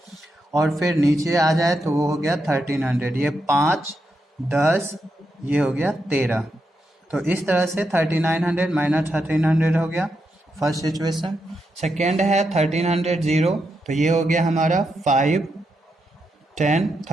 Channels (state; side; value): normal; both; correlation 0.84